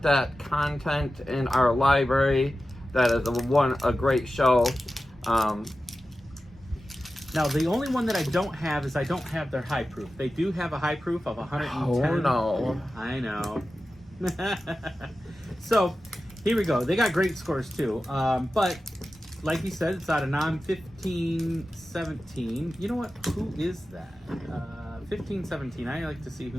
that content in our library. That is a great show. Now, the only one that I don't have is I don't have their high proof. They do have a high proof of 110. Oh no. I know. So, here we go. They got great scores too. But, like you said, it's out of NOM 1517. You know what? Who is that? 1517. I like to see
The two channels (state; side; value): normal; both; correlation 0.94